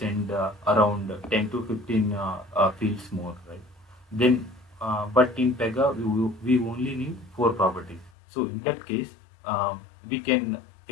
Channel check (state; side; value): drops out; right; at 8.1 s